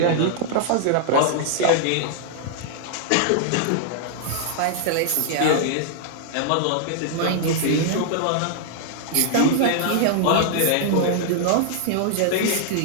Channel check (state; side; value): different; both; correlation -0.01